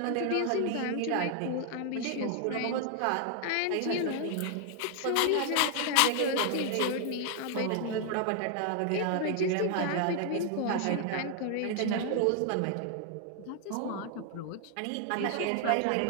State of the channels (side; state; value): both; different; correlation 0.00